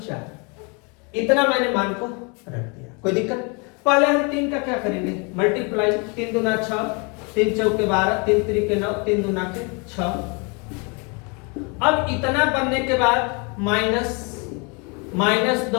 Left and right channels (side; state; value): right; quieter; 32.4 dB